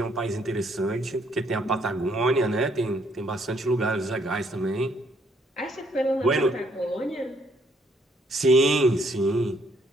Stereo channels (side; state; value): both; normal; correlation 0.68